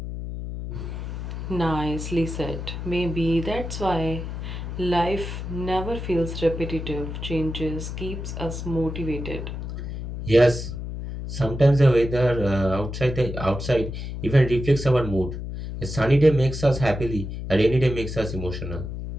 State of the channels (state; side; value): noise; left; hum, 6 dB below the sound